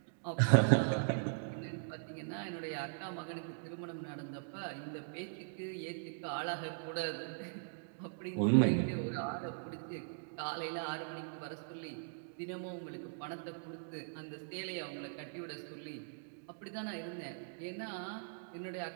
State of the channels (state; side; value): silent; left; digital silence